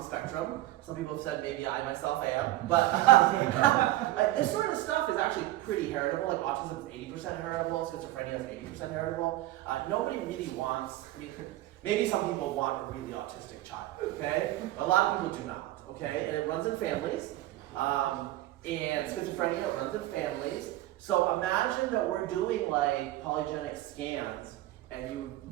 spectrum. Some people have said maybe I myself am, but this sort of stuff is actually pretty heritable. Like autism is 80% heritable, schizophrenia is 80% heritable. Nobody really wants, I mean, maybe some people want a really autistic child, okay? But a lot of people do not, okay? And it runs in families, and schizophrenia runs in families. So imagine that we're doing like polygenic scans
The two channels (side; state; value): left; quieter; 16.0 dB